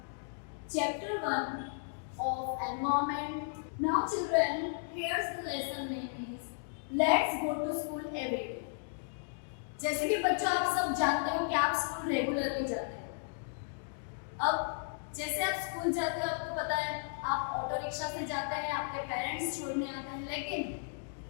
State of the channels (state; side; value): silent; right; digital silence